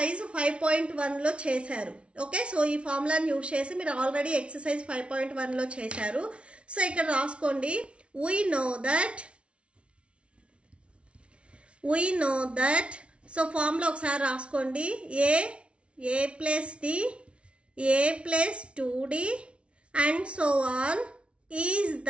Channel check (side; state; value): left; late; 0.060 ms